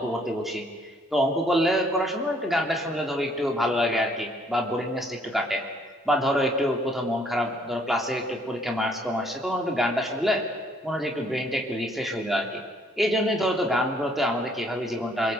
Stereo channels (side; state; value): both; normal; correlation 0.64